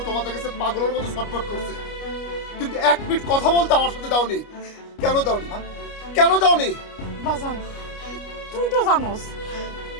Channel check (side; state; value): right; late; 29 ms